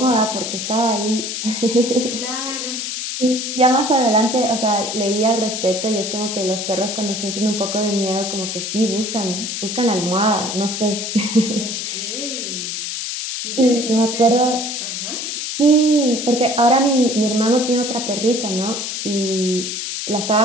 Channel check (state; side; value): noise; left; hiss, 4 dB below the sound